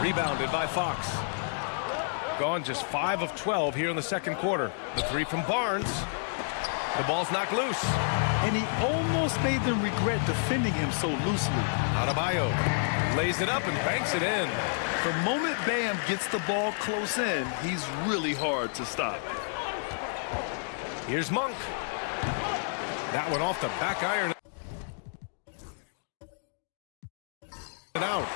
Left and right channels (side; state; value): right; silent; digital silence